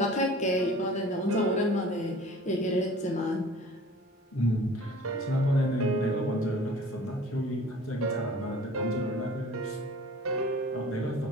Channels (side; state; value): both; normal; correlation 0.46